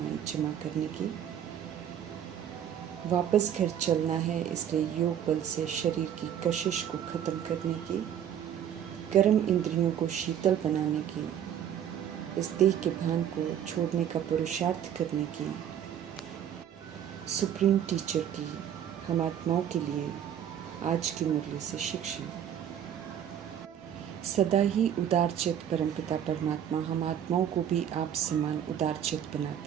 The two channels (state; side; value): quieter; left; 9.6 dB